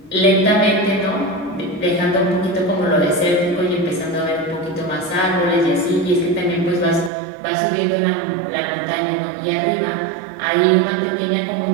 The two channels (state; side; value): drops out; left; at 7.1 s